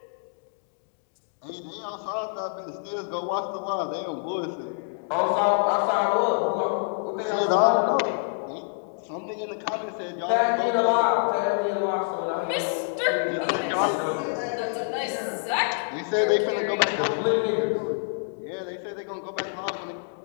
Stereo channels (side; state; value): right; silent; digital silence